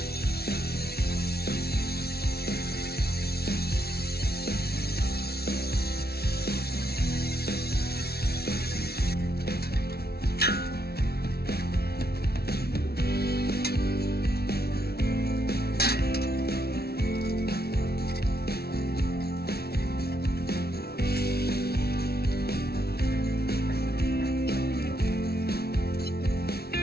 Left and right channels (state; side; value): late; right; 0.45 ms